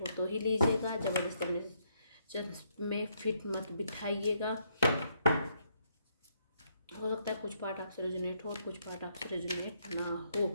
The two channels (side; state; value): both; inverted; correlation -0.73